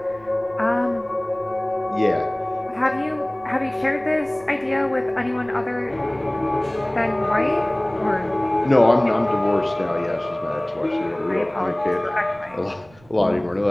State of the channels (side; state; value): right; noise; rumble, 27 dB below the sound